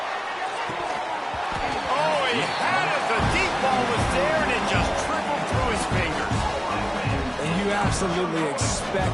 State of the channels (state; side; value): identical; both; correlation 1.00